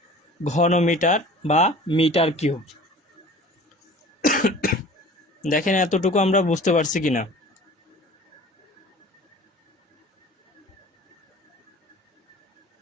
ঘন মিটার বা মিটার কিউব। দেখেন এতটুকু আমরা বুঝতে পারছি কিনা।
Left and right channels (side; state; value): both; normal; correlation 0.44